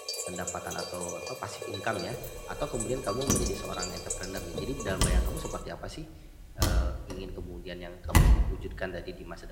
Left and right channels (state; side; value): identical; both; correlation 1.00